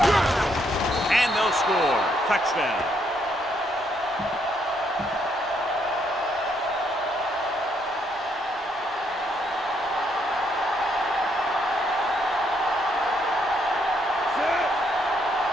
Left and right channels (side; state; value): both; normal; correlation 0.73